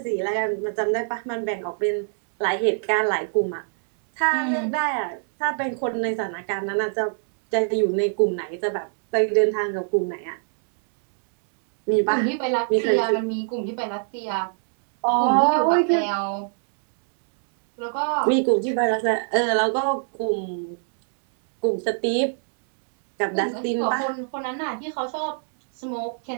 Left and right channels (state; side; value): silent; left; digital silence